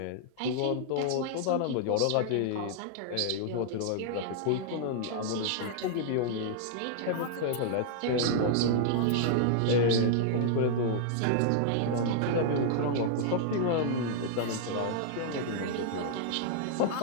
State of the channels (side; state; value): both; different; correlation -0.01